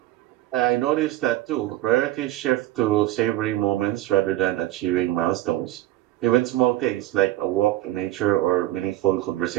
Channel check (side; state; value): left; quieter; 15.4 dB